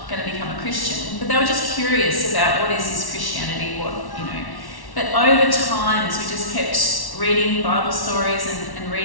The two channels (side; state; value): right; late; 1.1 ms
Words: going to become a Christian. But they were just curious about what is this Christianity, But over time, as we just kept reading Bible stories and